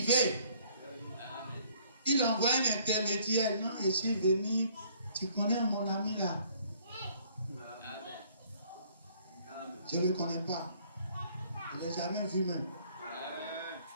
veut. Il envoie un intermédiaire. Non, je suis venu. Tu connais mon ami là? Je ne le connais pas. Je ne l'ai jamais vu même.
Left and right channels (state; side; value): inverted; both; correlation -0.60